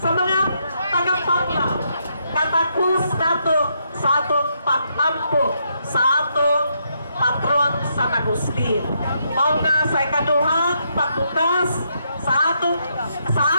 mga taga-Panglao. Katakos nato sa atong pag-ampo sa atong patron sa Agustin. Mao nga sa ikaduhang pagbukas sa atong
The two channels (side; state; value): both; inverted; correlation -0.77